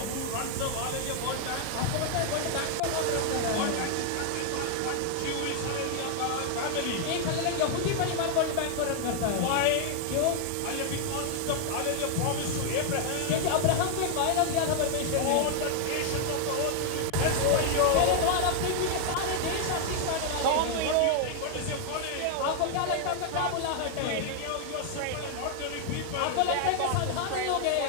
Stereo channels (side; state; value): both; different; correlation 0.00